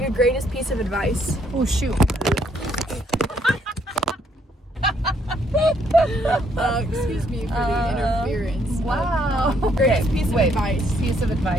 your greatest piece of advice. Oh, shoot. Excuse me for the interference. Wow. Greatest piece of advice. Piece of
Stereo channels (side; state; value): both; normal; correlation 0.70